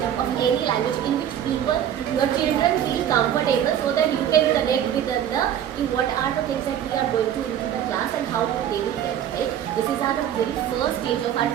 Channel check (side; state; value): left; quieter; 10.1 dB